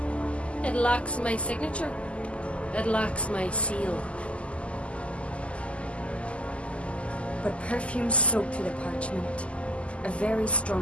It lacks my signature. It lacks my seal. But perfume soaked through the parchment. A very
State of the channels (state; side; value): late; right; 0.058 ms